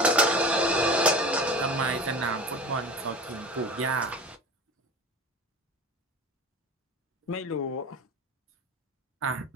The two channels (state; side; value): normal; both; correlation 0.34